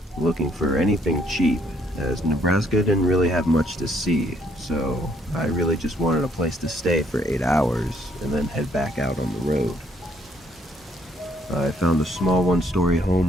looking for anything cheap, as Nebraska didn't really have much to see, so I really just wanted a place to stay for 8 hours and then head back out on the road. I found a small one-story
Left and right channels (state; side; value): normal; both; correlation 0.67